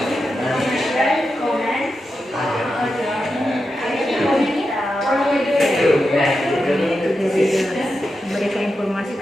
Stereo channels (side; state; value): both; normal; correlation 0.89